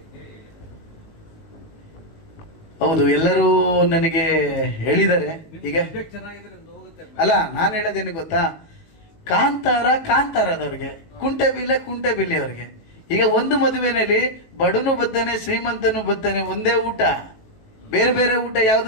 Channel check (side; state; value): right; late; 18 ms